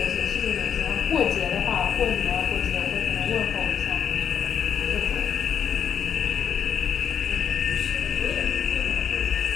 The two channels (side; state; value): right; quieter; 8.1 dB